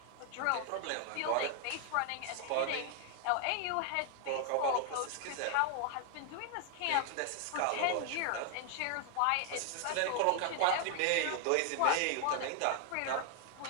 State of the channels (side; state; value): both; different; correlation 0.00